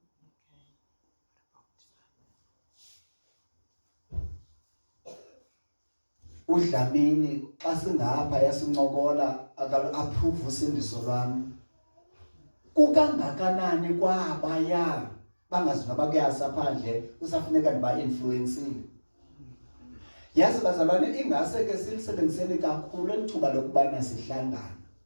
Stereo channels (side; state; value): both; inverted; correlation -1.00